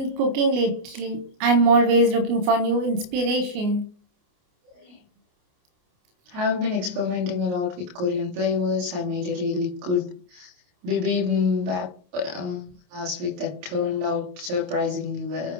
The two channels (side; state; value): left; late; 28 ms